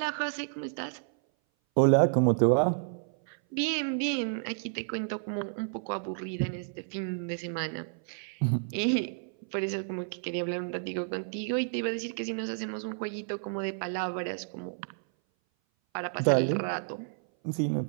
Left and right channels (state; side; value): silent; left; 57 dB below the other